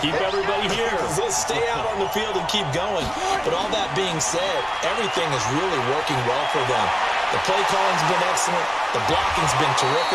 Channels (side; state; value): both; identical; correlation 1.00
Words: Keep everybody here. Let's stay out on the field and keep going. But all that being said, everything is really working well for them. The play calling's been excellent. The blocking's been